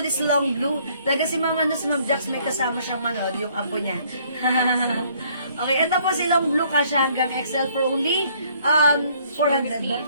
is long blue. Talaga si Ma'am Jax, may kasama siyang manood, yung apo niya. Okay, ito po si long blue, kasya hanggang XL for only 400 ba?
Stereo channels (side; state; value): both; inverted; correlation -0.62